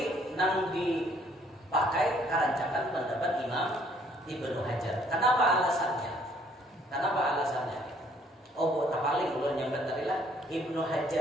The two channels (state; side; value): normal; both; correlation 0.62